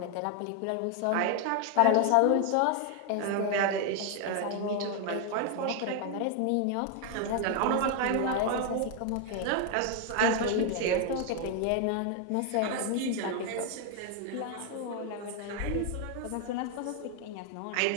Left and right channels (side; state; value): both; different; correlation 0.00